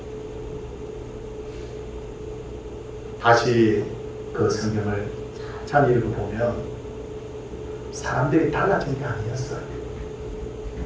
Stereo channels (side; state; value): both; identical; correlation 1.00